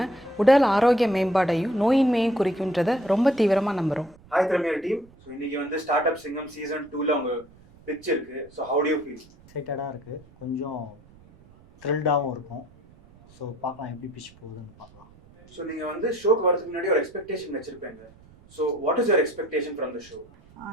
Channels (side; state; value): right; noise; rumble, 25 dB below the sound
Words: உடல் ஆரோக்கிய மேம்பாடையும் நோயின்மையும் குறிக்குன்றதை ரொம்ப தீவிரமாக நம்புகிறோம். Hi premier team. ஸோ இன்னைக்கு ஸ்டார்ட் அப் சிங்கம் சீசன் 2ல உங்க பிச் இருக்கு. So how do you feel? எக்ஸைட்டடாக இருக்குது, கொஞ்சம் த்ரில்டாகவும் இருக்கும். ஸோ பார்க்கலாம் எப்படி பிச் போகுதுன்னு பார்க்கலாம். ஸோ நீங்கள் ஷோக்கு வரதுக்கு முன்னாடி ஒரு எக்ஸ்பெக்டேஷன் வச்சிருப்பீங்க. So what is your expectation from the show?